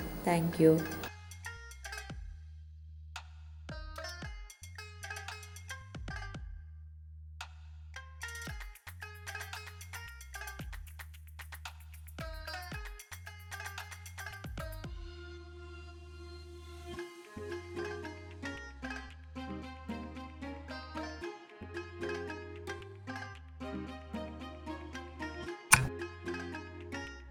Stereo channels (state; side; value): identical; both; correlation 1.00